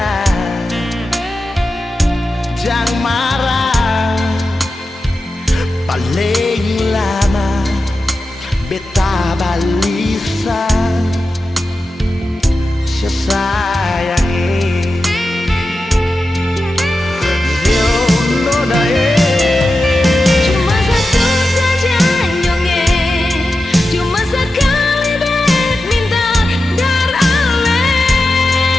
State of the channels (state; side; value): normal; both; correlation 0.92